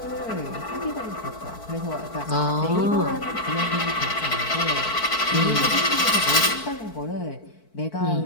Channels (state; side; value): late; right; 4.5 ms